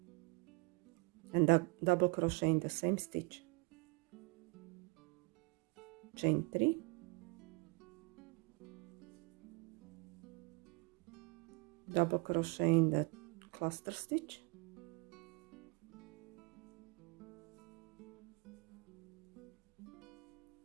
and double crochet in the same stitch, chain 3, double crochet in the cluster stitch,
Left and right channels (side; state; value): left; quieter; 29.4 dB